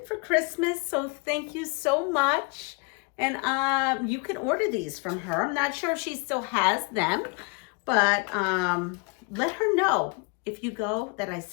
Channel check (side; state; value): right; quieter; 32.4 dB